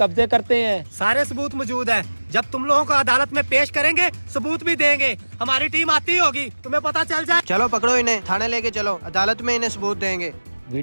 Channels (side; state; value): both; inverted; correlation -1.00